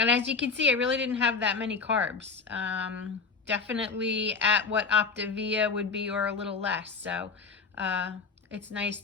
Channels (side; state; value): right; quieter; 4.7 dB